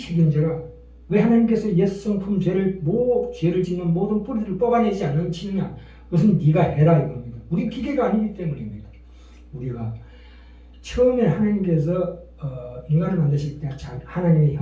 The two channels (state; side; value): identical; both; correlation 1.00